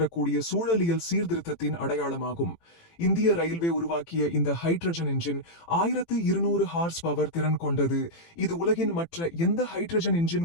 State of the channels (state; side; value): late; right; 18 ms